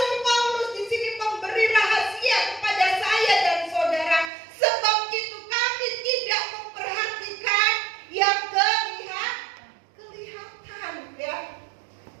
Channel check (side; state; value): left; drops out; at 4.3 s